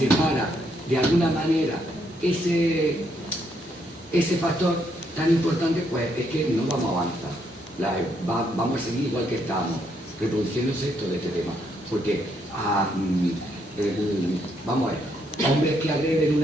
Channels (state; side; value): normal; both; correlation 0.74